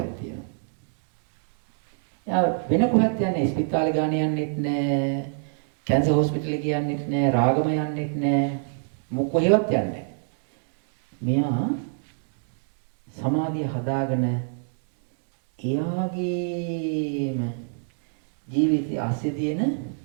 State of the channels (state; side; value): silent; left; digital silence